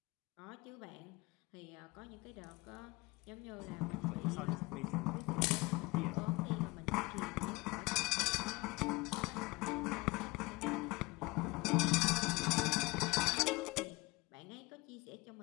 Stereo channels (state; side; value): quieter; right; 23.5 dB